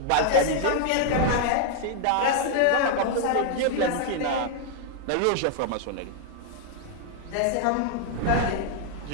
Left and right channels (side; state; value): both; different; correlation 0.00